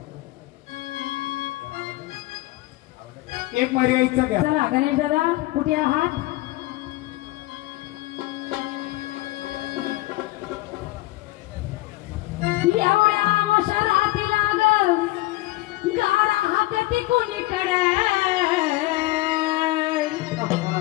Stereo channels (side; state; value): right; quieter; 19.5 dB